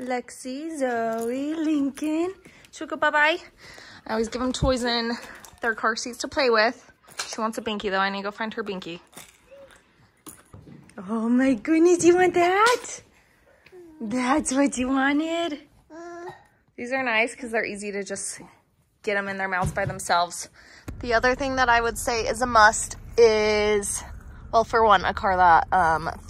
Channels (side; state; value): both; identical; correlation 1.00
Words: Lexi, Zoe, Lincoln. Should we go bye-bye? I always give them toys in their car seats to play with. She wants a Binky though. I need to go find her Binky. Oh my goodness, you want that? That's what you wanted? These are nice because they're easy to just get them in their mouths by themselves. The other thing that I would say is a must is Well, for one, a car that